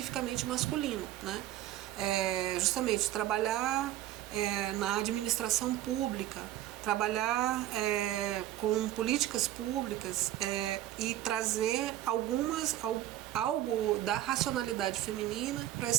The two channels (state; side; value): quieter; left; 13.6 dB